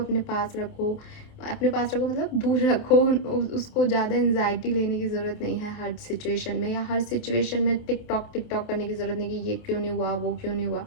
पास रखो, मतलब दूर रखो उसको। ज़्यादा एंजाइटी लेने की ज़रूरत नहीं है हर सिचुएशन में, या हर सिचुएशन में टिक टॉक करने की ज़रूरत नहीं कि ये क्यों नहीं हुआ, वो क्यों नहीं हुआ।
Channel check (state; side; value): late; right; 28 ms